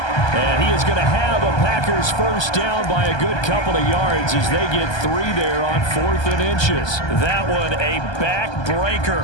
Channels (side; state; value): right; late; 1.2 ms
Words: And he is going to have a Packers first down by a good couple of yards as they get 3 there on 4th and inches. That one a